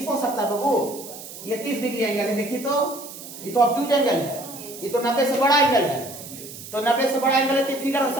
हो सकता है बाबू, ये 30 डिग्री एंगल है, देखिए तो ये तो ऑब्ट्यूज एंगल है, ये तो 90 से बड़ा एंगल है, तो 90 से बड़ा एंगल है तो फिगर ऐसा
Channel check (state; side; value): noise; right; hiss, 13 dB below the sound